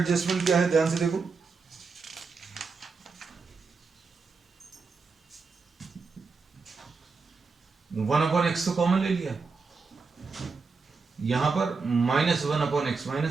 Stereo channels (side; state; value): left; quieter; 4.6 dB